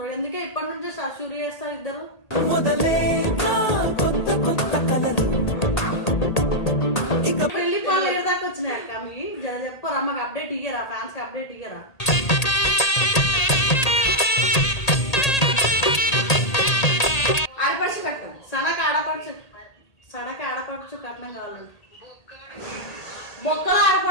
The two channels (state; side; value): late; right; 1.8 ms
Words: ఎందుకే ఇప్పటి నుంచే షూరి చేస్తారు ఇద్దరు. పెళ్లి పనులు ఏదాకా వచ్చినాయి అక్క మీ జర చెప్పరా, మాకు అప్డేట్ ఇయ్యరా, ఫ్యాన్స్ కి అప్డేట్ ఇయ్యరా. ఆడపడుచు కట్టం సడక ఆడపడుచు కట్నం కావాలండి. బొక్కలు